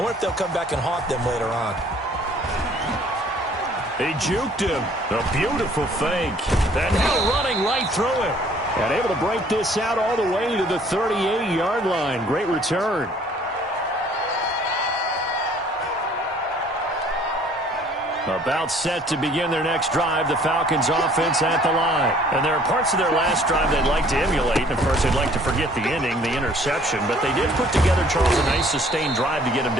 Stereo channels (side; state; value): both; normal; correlation 0.57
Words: wonder if they'll come back and haunt them later on. He juked him. A beautiful fake. And now running right through him. And able to break this out all the way to the 38-yard line. Great return. About set to begin their next drive, the Falcons offense at the line. And there are parts of their last drive they'd like to emulate. And, of course, they'd like to forget the ending, the interception. But they did put together, Charles, a nice sustained drive to get him